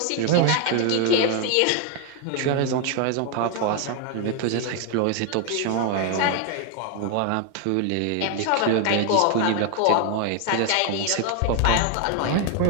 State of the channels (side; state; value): both; different; correlation 0.01